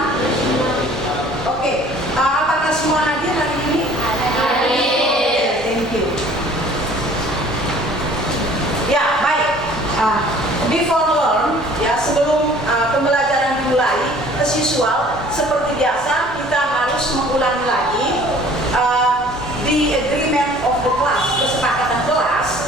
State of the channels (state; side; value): normal; both; correlation 0.51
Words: Oke. Apakah semua hadir hari ini? Hadir. Thank you. Ya, baik. Before learn, ya sebelum pembelajaran dimulai, as usual, seperti biasa kita harus mengulangi lagi the agreement of the class, kesepakatan